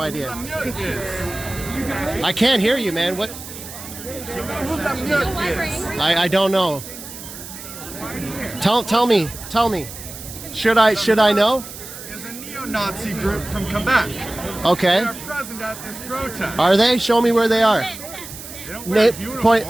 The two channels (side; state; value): right; noise; hiss, 13 dB below the sound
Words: Lamute is. I can't hear you, man. What? You know who Lamute is? I don't know. Tell me. Should I know? Is a neo-Nazi group from Quebec. Okay. They are present at this protest. Are they? Show me where they are. They don't wear